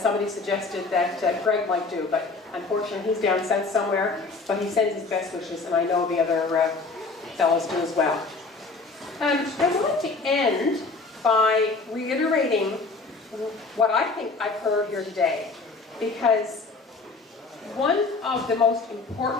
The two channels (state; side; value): quieter; right; 3.9 dB